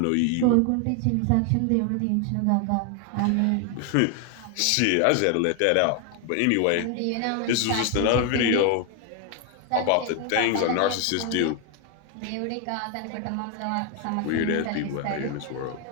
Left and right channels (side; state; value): both; different; correlation 0.01